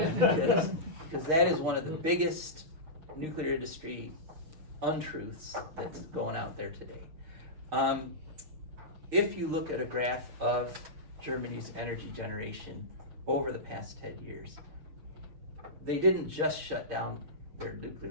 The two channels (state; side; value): late; left; 6.4 ms